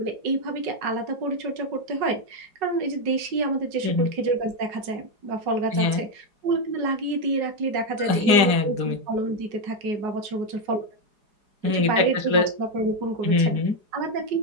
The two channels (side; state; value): left; late; 4.8 ms